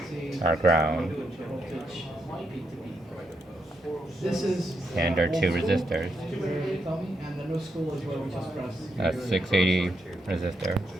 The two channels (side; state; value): both; normal; correlation 0.80